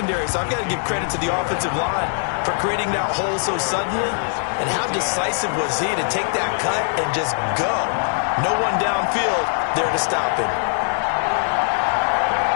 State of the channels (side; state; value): right; silent; digital silence